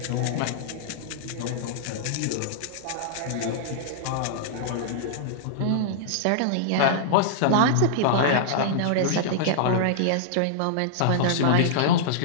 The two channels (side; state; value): both; different; correlation -0.02